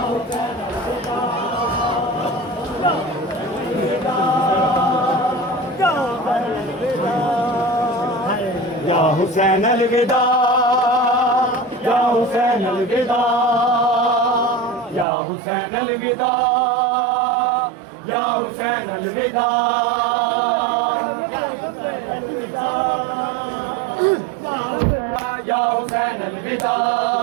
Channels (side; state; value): left; drops out; at 15.1 s